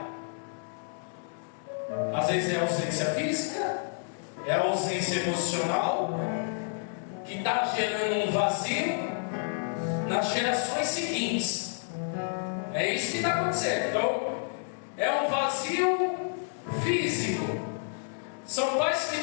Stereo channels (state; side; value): silent; right; digital silence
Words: Às vezes é a ausência física, é a ausência emocional, que está gerando um vazio nas gerações seguintes. É isso que está acontecendo. Então, é um vazio físico. São pais que